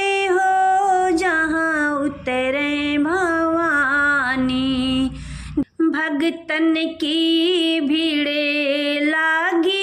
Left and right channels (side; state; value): both; identical; correlation 1.00